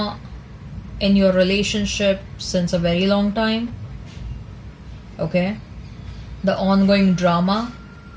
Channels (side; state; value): both; identical; correlation 1.00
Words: in your relationship since a very long time. Okay, the ongoing drama